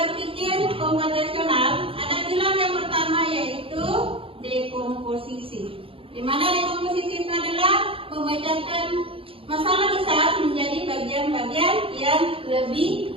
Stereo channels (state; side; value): late; left; 0.27 ms